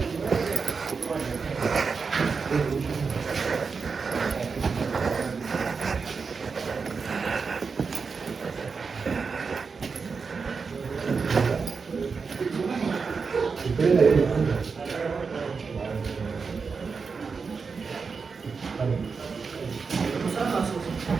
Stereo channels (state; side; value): quieter; left; 5.1 dB